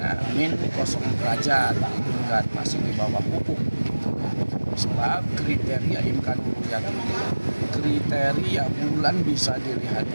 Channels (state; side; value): inverted; both; correlation -1.00